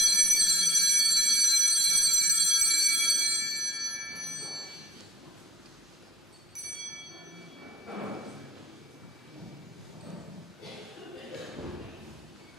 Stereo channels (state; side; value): normal; both; correlation 0.63